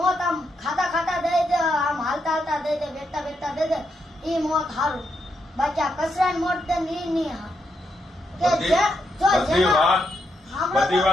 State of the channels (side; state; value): both; normal; correlation 0.81